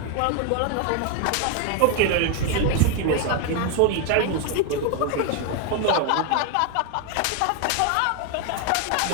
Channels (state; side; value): different; both; correlation 0.01